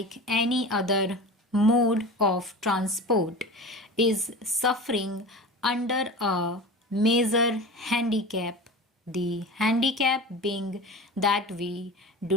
any other mode of transport, is suffering under a major handicap. The handicap being that we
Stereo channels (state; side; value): normal; both; correlation 0.33